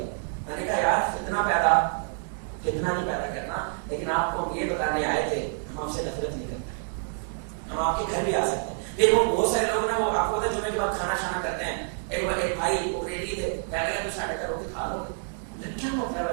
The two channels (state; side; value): silent; left; 60 dB below the other